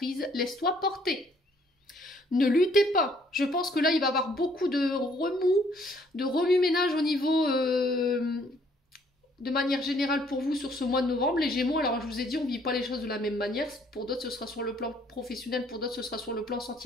laisse-toi porter. Ne luttez pas. Je pense que là, il va y avoir beaucoup de remue-ménage au niveau... de manière générale pour vous sur ce mois de novembre, les Gémeaux. Alors je vous ai dit, on ne vit pas les choses de la même manière. Pour d'autres, ce sera sur le plan professionnel, pour d'autres, ce sera sur le plan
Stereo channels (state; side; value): normal; both; correlation 0.63